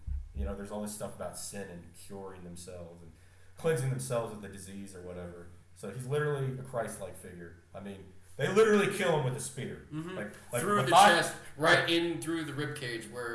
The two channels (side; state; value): both; identical; correlation 1.00